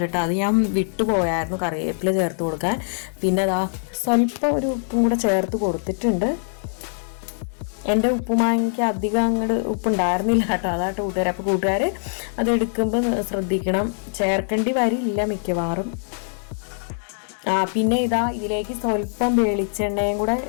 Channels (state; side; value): silent; right; digital silence